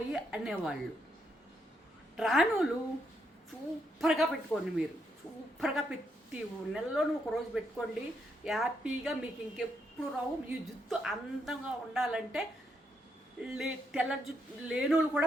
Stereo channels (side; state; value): both; normal; correlation 0.78